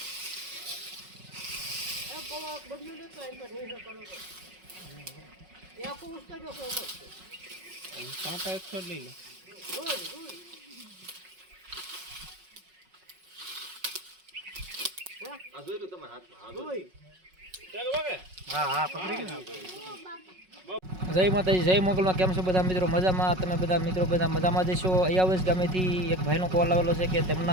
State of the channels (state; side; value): late; left; 5.4 ms